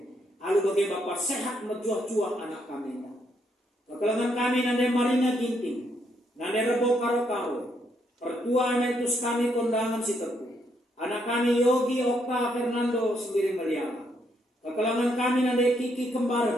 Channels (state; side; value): normal; both; correlation 0.75